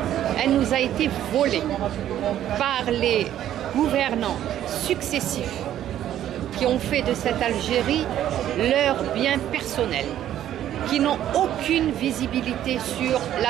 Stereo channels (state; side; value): quieter; left; 11.6 dB